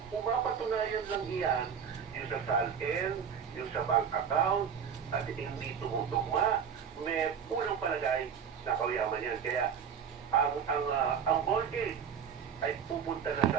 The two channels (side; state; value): left; quieter; 7.4 dB